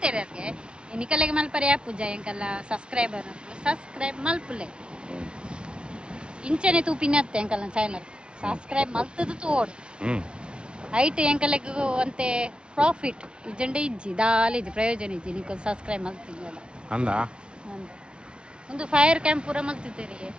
ಅದಕ್ಕೆ ನಿಕಲೆಗೆ ಮಲ್ಪರೆ ಪೂಜ ಎಂಕಲ್ಲ ಸಬ್ಸ್ಕ್ರೈಬರ್ ಮಲ್ಪಲೆ ಇಂಚನೆ ತೂಪಿನತ್ತೆ ಎಂಕಲ್ಲ ಚಾನಲ್ ಸಬ್ಸ್ಕ್ರೈಬ್ ಮಲ್ತದು ತೋಡು ಹ್ಞೂ ಐಟ್ ಎಂಕಲೆಗೆ ಅಂತೆ ಪ್ರಾಫಿಟ್ ಇಜ್ಜಂಡೆ ಇಜ್ಜಿ ದಾಲಿ ಇಜ್ಜಿ ಪ್ರಯೋಜನ ಇಜ್ಜಿ ನೀವು ಸಬ್ಸ್ಕ್ರೈಬ್ ಮಲ್ತಿದ್ವಲ್ಲ ಅಂದ ಒಂದು ಫೈರ್ ಕ್ಯಾಂಪ್ ಪೂರ ಮಲ್ತಿದ್ದೀರಿ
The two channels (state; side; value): late; left; 0.055 ms